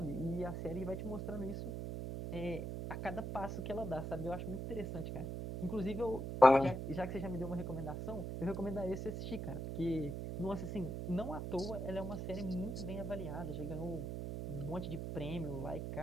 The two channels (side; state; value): right; noise; hum, 4 dB below the sound